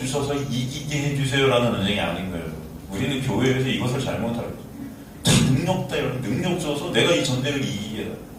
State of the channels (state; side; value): identical; both; correlation 1.00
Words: 이기게 해주세요라는 전쟁이 아닌 거예요. 우리는 교회에서 이것을 잘못하고 능력 때문에 능력 줘서 내가 이 전쟁을 이기게 해.